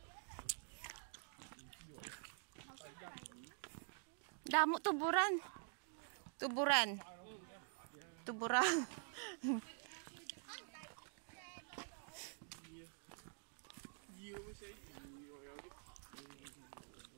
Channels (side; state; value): left; silent; digital silence